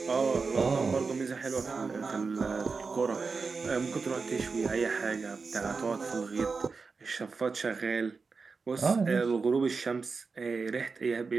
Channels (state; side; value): quieter; left; 4.6 dB